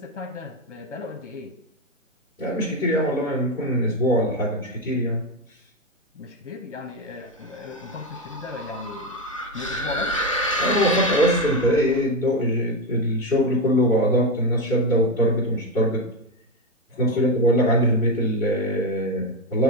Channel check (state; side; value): normal; both; correlation 0.12